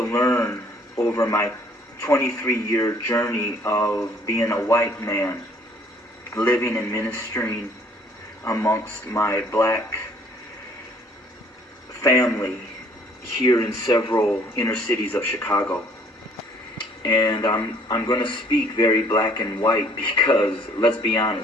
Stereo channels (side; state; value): both; normal; correlation 0.59